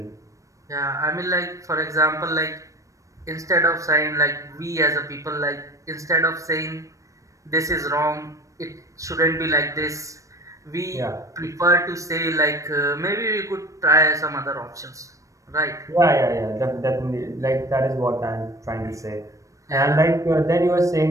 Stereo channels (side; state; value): left; late; 0.16 ms